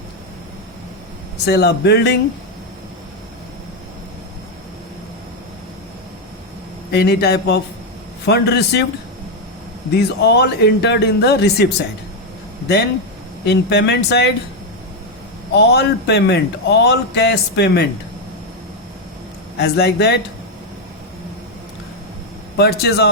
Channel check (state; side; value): normal; both; correlation 0.04